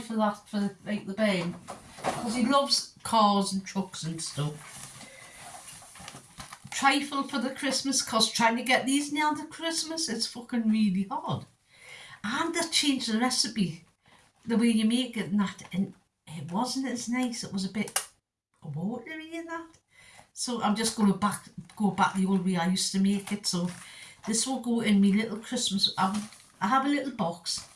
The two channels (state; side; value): identical; both; correlation 1.00